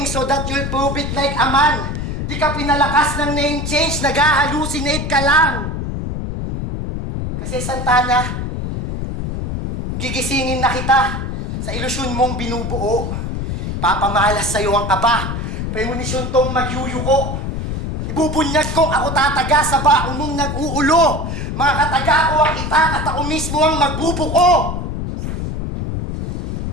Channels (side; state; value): left; noise; rumble, 3 dB below the sound